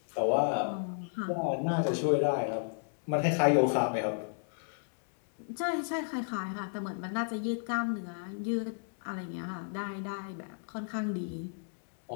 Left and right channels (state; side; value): silent; right; digital silence